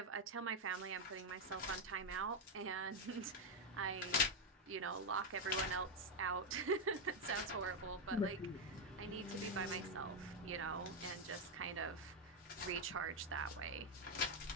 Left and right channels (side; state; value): both; normal; correlation 0.04